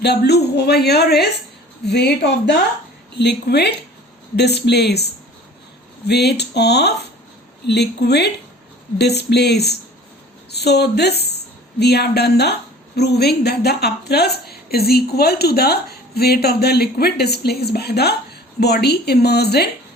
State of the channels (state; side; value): normal; both; correlation 0.46